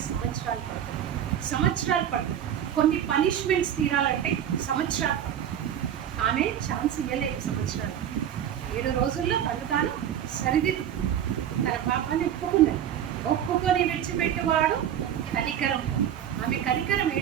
సంవత్సరాలు పడుతుంది. కొన్ని పనిష్మెంట్స్ తీరాలంటే సంవత్సరాలు పడుతుంది. ఆమె ఛాన్స్ ఇవ్వలేదు సంవత్సరాలు. 7 రోజుల్లో తాను సరిదిద్దు తన పాపాన్ని ఒప్పుకొని విడిచిపెట్టేవాడు కనికరం. ఆమె కనికరం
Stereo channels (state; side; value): quieter; left; 9.9 dB